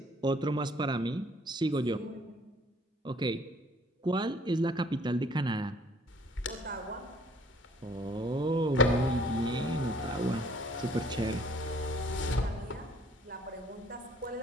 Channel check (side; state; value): both; normal; correlation 0.59